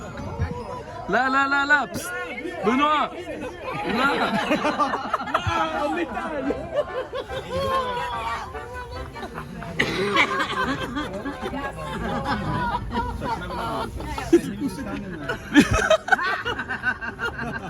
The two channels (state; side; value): identical; both; correlation 1.00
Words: Là. Psst. Benoît. Là. En métal.